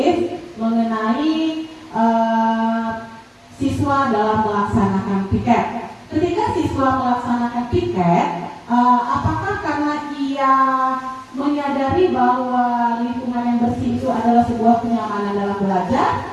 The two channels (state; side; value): identical; both; correlation 1.00